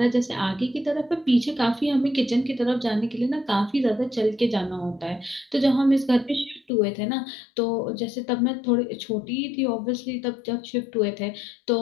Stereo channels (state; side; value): drops out; right; at 6.7 s